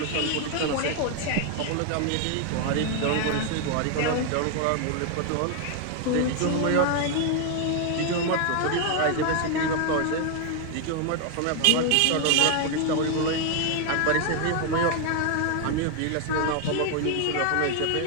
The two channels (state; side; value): different; both; correlation 0.00